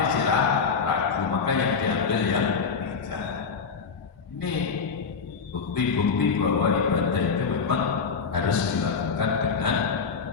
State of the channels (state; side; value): quieter; right; 5.6 dB